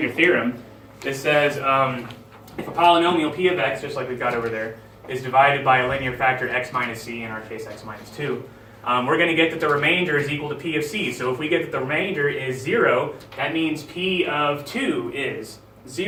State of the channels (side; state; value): both; identical; correlation 1.00